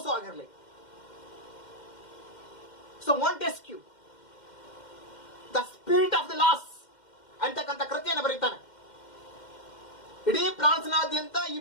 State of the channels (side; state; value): right; late; 2.1 ms